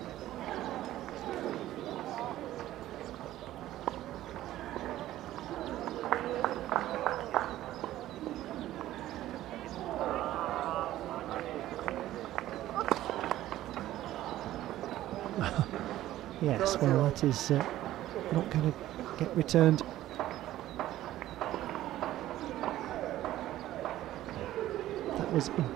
Yes, well, that is not going to get returned. That was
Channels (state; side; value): quieter; left; 14.2 dB